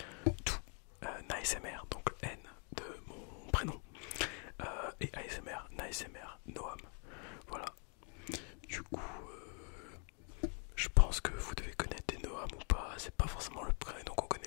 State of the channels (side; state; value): right; quieter; 38.3 dB